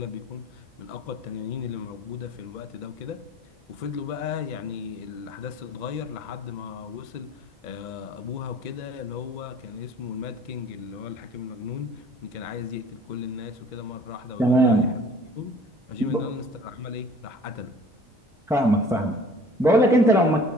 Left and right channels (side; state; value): both; normal; correlation 0.49